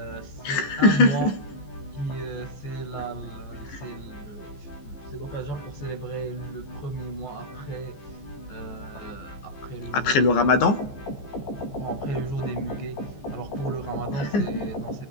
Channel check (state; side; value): late; right; 14 ms